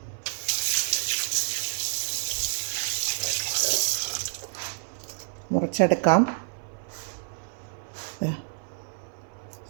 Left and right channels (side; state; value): left; silent; 56 dB below the other